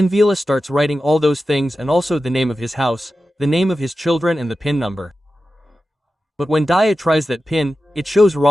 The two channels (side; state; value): both; normal; correlation 0.93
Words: Vila starts writing all those things and also the name of his house, the name of his children and the PIN number. But when Daya tries that PIN, it shows